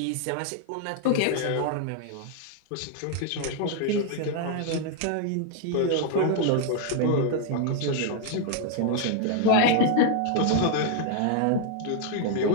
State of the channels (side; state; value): both; different; correlation 0.00